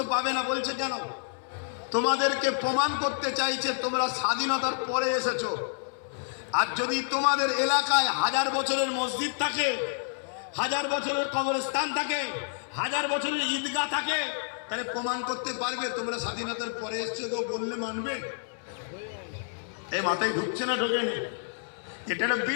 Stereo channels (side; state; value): right; silent; 59 dB below the other